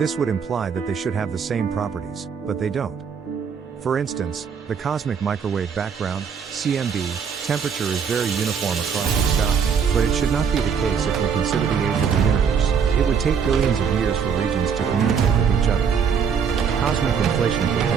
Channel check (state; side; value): quieter; left; 6.7 dB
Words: would imply that they should have the same properties, but they don't. For instance, the cosmic microwave background, CMB, temperature is very uniform across the sky, but it should not be the case if we consider the age of the universe. It would take billions of years for regions to communicate with each other. Cosmic inflation